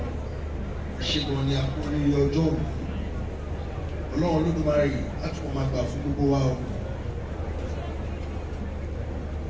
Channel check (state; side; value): identical; both; correlation 1.00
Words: ṣe gan ni àkórí ọjọ́ òní ọlọ́run Olódùmarè á tún máa gbà fún gbogbo wa o.